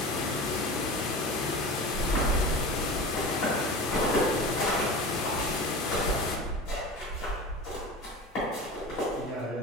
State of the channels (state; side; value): normal; both; correlation 0.32